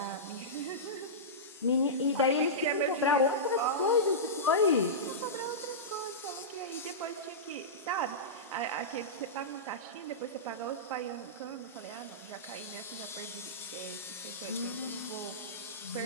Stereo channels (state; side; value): normal; both; correlation -0.16